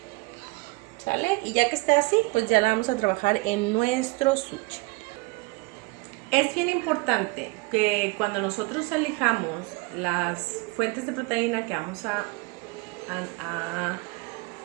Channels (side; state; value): left; quieter; 26.5 dB